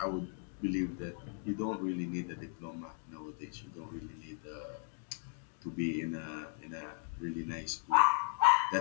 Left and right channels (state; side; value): silent; right; 53 dB below the other